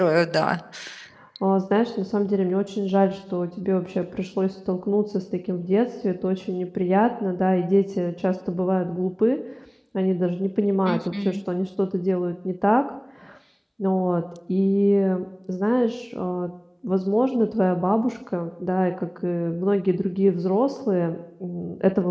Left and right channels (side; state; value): both; identical; correlation 1.00